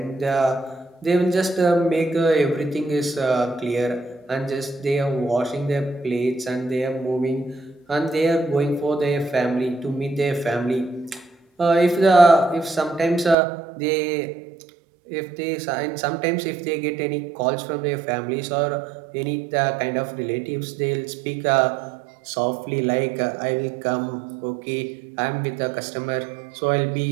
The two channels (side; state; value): left; drops out; at 13.4 s